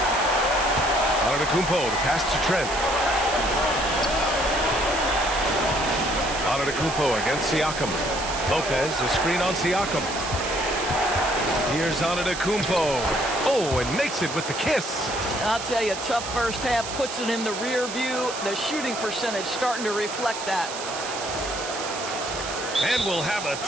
Antetokounmpo, the pass to Trent. Antetokounmpo against Siakam. Lopez, the screen on Siakam. Here's Antetokounmpo. Oh, and makes it with the kiss. I'll tell you, tough first half, puts it in the rear view. The shooting percentage starting to reflect that. And we'll have a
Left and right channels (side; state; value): right; noise; hiss, 8 dB below the sound